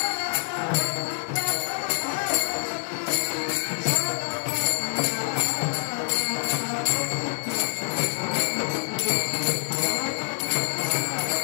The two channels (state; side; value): silent; right; 61 dB below the other